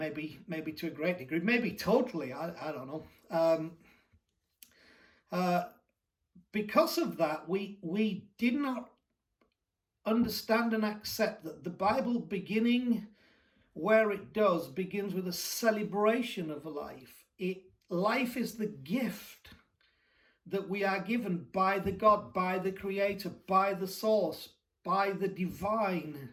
to a great degree, maybe totally, I don't know. Because of that, we did not understand and accept that the Bible, beginning where it does, begins with a celebration of life. Life is the gift that we are given by the God, by the Creator, by the Source, by the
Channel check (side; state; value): both; identical; correlation 1.00